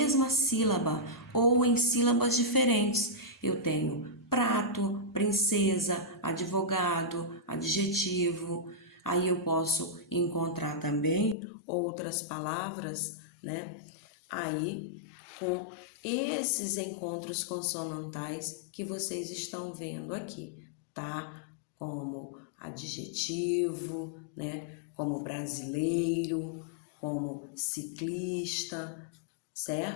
sílaba ou em sílabas diferentes. Eu tenho prato, princesa, advogado, adjetivo. Aí eu posso encontrar também outras palavras, aí com esses encontros consonantais que vocês estão vendo aqui, tá? Como adjetivo, como brasileiro, como ciclista,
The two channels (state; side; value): drops out; right; at 11.4 s